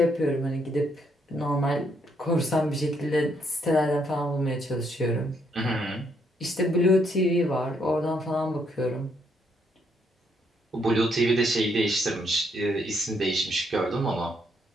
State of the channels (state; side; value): normal; both; correlation 0.73